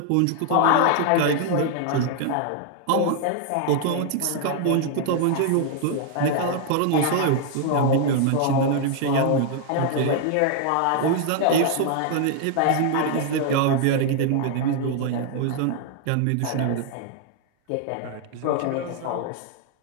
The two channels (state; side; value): different; both; correlation 0.00